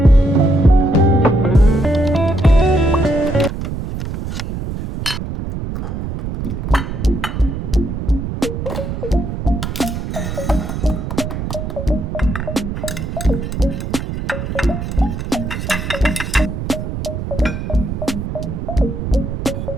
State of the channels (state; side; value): noise; right; rumble, 5 dB below the sound